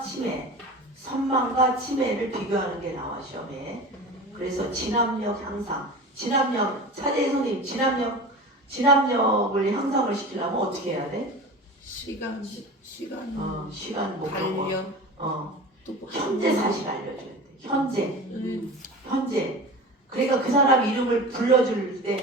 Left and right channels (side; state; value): both; normal; correlation 0.33